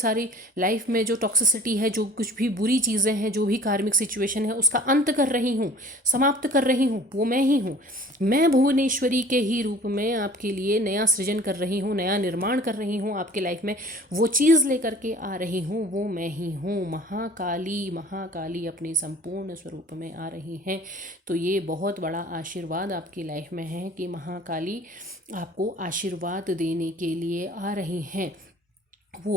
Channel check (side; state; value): both; normal; correlation 0.47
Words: लाइफ में जो टॉक्सिसिटी है, जो कुछ भी बुरी चीज़ें हैं, जो भी कार्मिक सिचुएशन है, उसका अंत कर रही हूँ, समाप्त कर रही हूँ, वो मैं ही हूँ। मैं भुवनेश्वरी के ही रूप में आपके लिए नया सृजन कर रही हूँ, नया निर्माण कर रही हूँ। आपके लाइफ में वो चीज़ लेकर के आ रही हूँ, वो मैं ही हूँ। महाकाली, महाकाली अपने संपूर्ण स्वरूप में आ रही हैं। तो ये बहुत बड़ा आशीर्वाद आपकी लाइफ में है कि महाकाली आपको आशीर्वाद देने के लिए आ रही हैं।